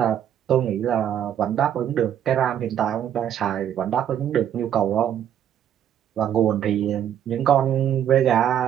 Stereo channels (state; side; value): quieter; left; 9.9 dB